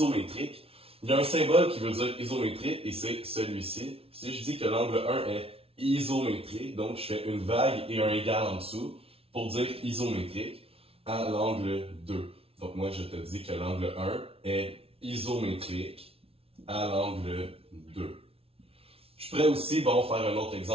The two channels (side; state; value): left; late; 0.28 ms